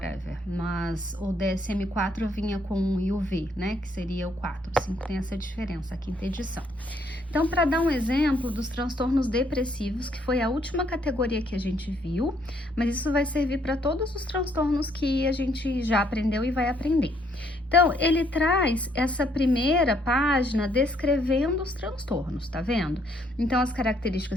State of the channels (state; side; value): normal; both; correlation 0.69